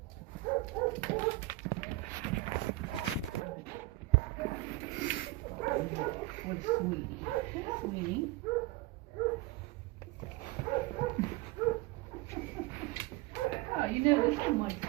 With Sweetie. Sweetie. Oh, you know this one likes to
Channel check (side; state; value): left; quieter; 18.5 dB